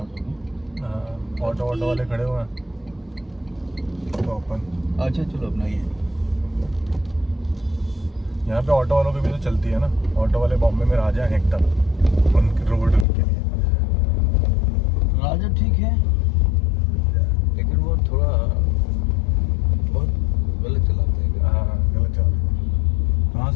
हो गए ऑटो वाले खड़े हुए हैं तो अपन अच्छा चलो अपना ये यहाँ पे ऑटो वालों की भी तो चलती है ना ऑटो वाले बॉम्बे में राजा हैं एकदम उनके रोड उनके लिए राजा ठीक है लेकिन वो थोड़ा बहुत गलत चलाते हैं हाँ गलत चलाते हाँ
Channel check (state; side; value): drops out; right; at 13.1 s